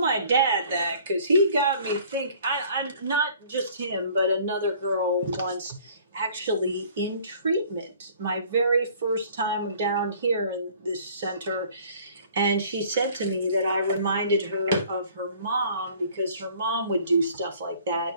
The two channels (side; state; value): both; inverted; correlation -0.53